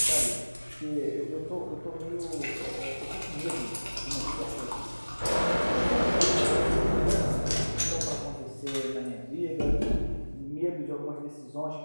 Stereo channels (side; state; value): both; inverted; correlation -1.00